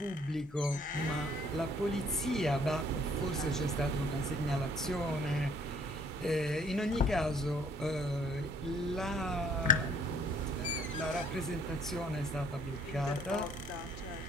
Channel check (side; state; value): both; normal; correlation 0.60